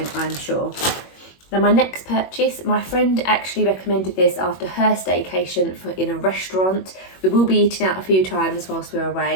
I'm sure. Now my next purchase, my friend actually recommended this after her staycation in a restaurant. We will be eating out a few times whilst we're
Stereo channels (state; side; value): late; right; 21 ms